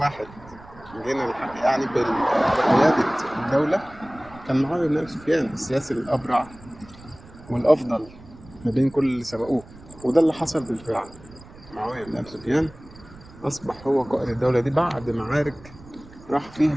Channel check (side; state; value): right; noise; rumble, 21 dB below the sound